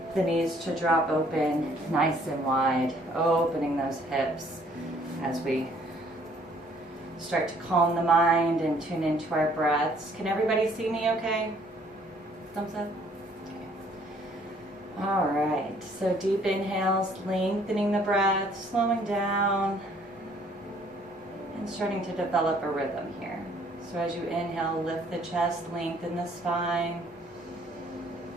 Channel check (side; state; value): both; normal; correlation 0.61